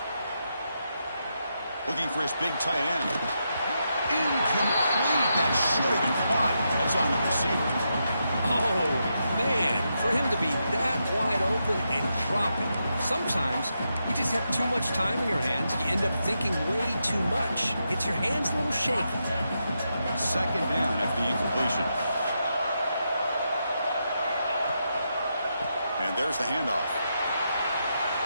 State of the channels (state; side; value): inverted; both; correlation -0.84